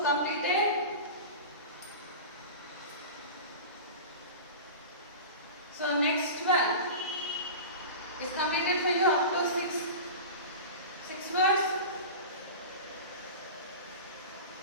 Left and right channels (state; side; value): inverted; both; correlation -0.31